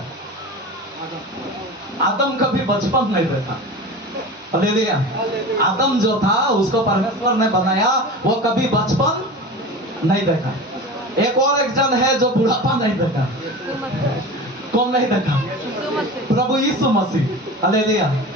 आदम कभी बचपन नहीं देखा। हालेलुया। आदम जो था, उसको परमेश्वर ने बनाया, वो कभी बचपन नहीं देखा। एक जन है जो बुढ़ापा नहीं देखा। कौन नहीं देखा? प्रभु यीशु मसीह। हालेलुया।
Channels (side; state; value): both; normal; correlation 0.32